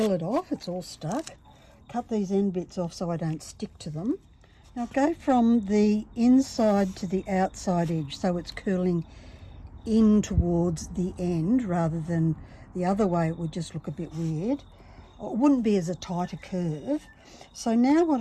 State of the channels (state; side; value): identical; both; correlation 1.00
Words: it off, it's all stuck. Cut these end bits off so I don't stick to them. Now go from the inside to the outside edge so it's curling in towards the end rather than the other way. It would just look a bit weird. It wouldn't be as a tighter curve. So now